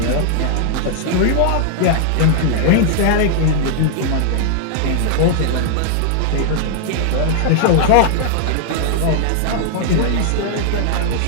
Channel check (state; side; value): different; both; correlation 0.00